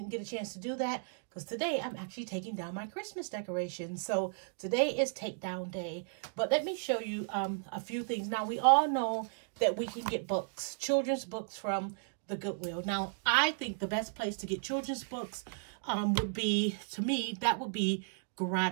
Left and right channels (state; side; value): silent; left; digital silence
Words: get a chance to do that because today I'm actually taking down my Christmas decorations. So today is takedown day. But let me show you a few things. Now, we all know that we can get books, children's books from the Goodwill. Now, I think the best place to get children's books would be, to me, that would be